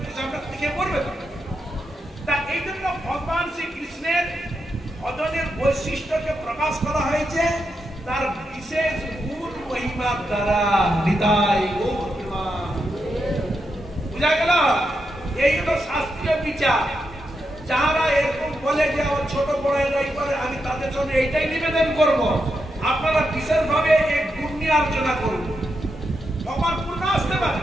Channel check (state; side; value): normal; both; correlation 0.85